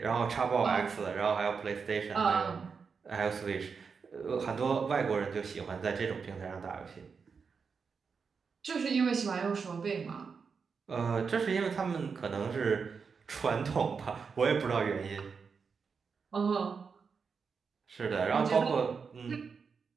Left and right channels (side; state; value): left; quieter; 5.6 dB